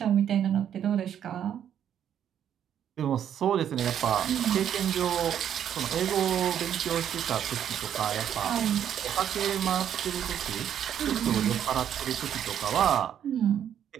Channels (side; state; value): left; quieter; 9.5 dB